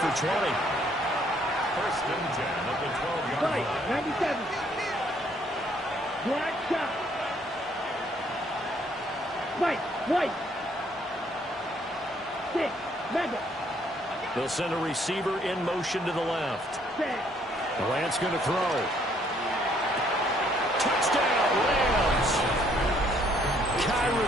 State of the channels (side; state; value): both; normal; correlation 0.66